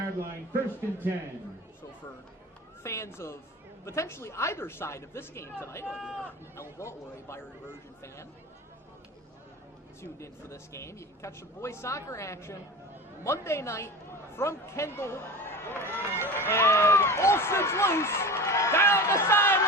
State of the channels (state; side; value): normal; both; correlation 0.31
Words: line, 1st and 10. So for fans of potentially either side of this game tonight, whether you're an Elba or a Byron-Bergen fan, tuned in for this game, you can catch some boys soccer action Monday night from Kendall. And Olsen's loose down the